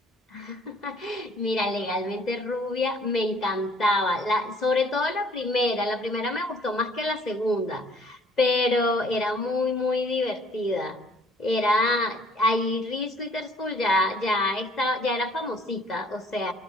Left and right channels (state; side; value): normal; both; correlation 0.57